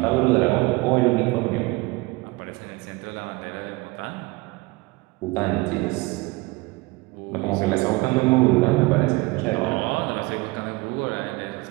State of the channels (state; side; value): quieter; left; 23.2 dB